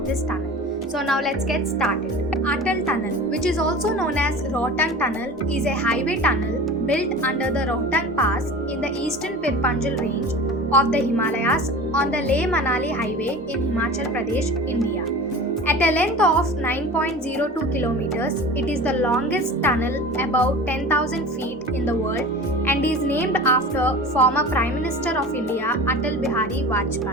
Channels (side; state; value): both; normal; correlation 0.36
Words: this tunnel. So now let's get started. Atal Tunnel, which is also known as Rohtang Tunnel, is a highway tunnel built under the Rohtang Pass in the eastern Pir Panjal range of the Himalayas on the Leh-Manali highway in Himachal Pradesh, India. At a length of 9.02 kilometers, it is the longest tunnel above 10,000 feet in the world and is named after former Prime Minister of India Atal Bihari